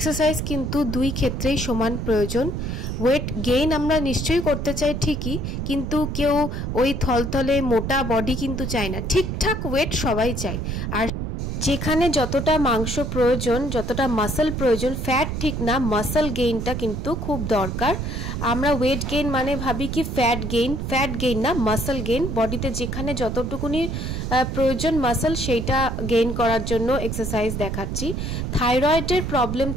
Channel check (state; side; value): noise; right; rumble, 3 dB below the sound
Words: किन्तु दुई क्षेत्रेई समान प्रयोजन। वेट गेइन आमरा निश्चयই करते चाই ঠিকই, কিন্তু কেউ ওই থলথলে মোটা বডি কিন্তু চায় না, ঠিকঠাক ওয়েট সবাই চায়। আর যেখানে যতটা মাংস প্রয়োজন, যতটা মাসল প্রয়োজন, ফ্যাট ঠিক না, মাসল গেইনটা কিন্তু খুব দরকার। আমরা ওয়েট গেইন মানে ভাবি কি ফ্যাট গেইন না, মাসল গেইন। বডিতে যেখানে যতটুকুনি প্রয়োজন মাসল, সেইটা গেইন করার জন্য এক্সারসাইজ দেখাচ্ছি। থাইরয়েডের প্রবলেম